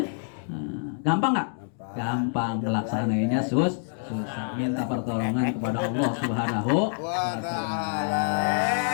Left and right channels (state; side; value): silent; right; digital silence